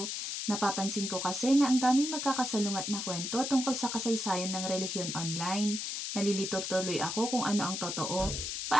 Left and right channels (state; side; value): noise; left; hiss, 4 dB below the sound